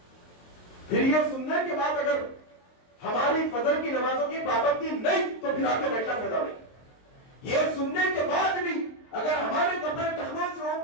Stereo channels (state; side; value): late; right; 23 ms